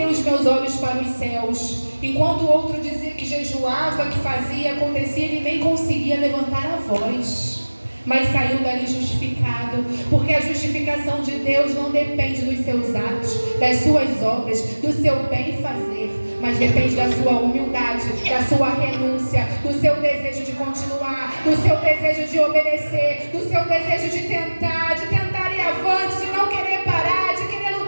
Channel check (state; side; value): inverted; both; correlation -1.00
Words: os meus olhos para os céus. Enquanto o outro dizia que jejuava, que fazia, acontecia, ele nem conseguia levantar a voz. Mas saiu dali justificado, porque a justificação de Deus não depende dos seus atos, das suas obras, do seu bem fazer, mas depende da sua humildade, da sua renúncia, do seu desejo de continuar, do seu desejo de obedecer, do seu desejo de tentar ir avante, de não querer parar, de querer